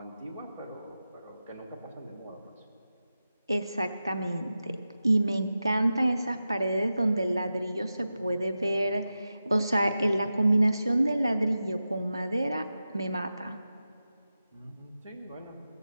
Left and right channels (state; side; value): inverted; both; correlation -0.92